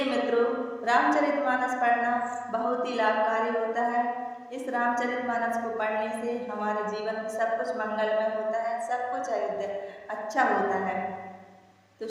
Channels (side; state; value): both; identical; correlation 1.00